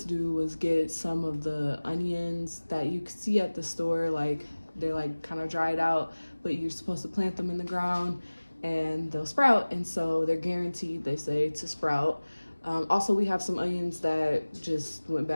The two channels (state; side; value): inverted; both; correlation -1.00